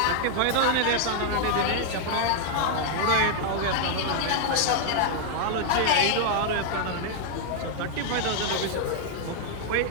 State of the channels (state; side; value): different; both; correlation 0.00